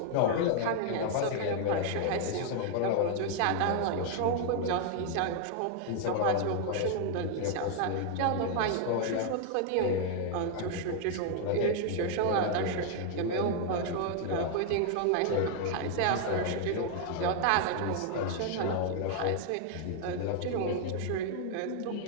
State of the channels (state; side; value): different; both; correlation 0.00